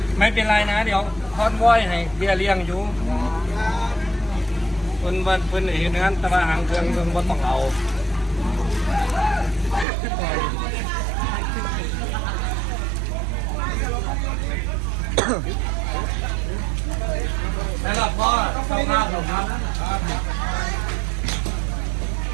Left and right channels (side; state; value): left; drops out; at 9.9 s